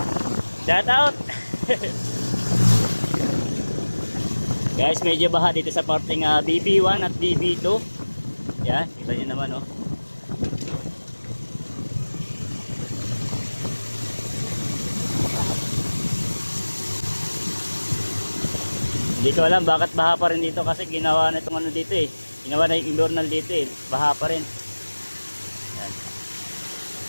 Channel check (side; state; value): both; inverted; correlation -1.00